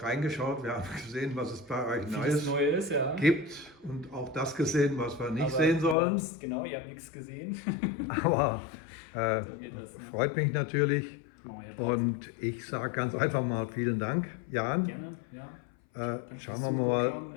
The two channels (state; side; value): drops out; right; at 6.0 s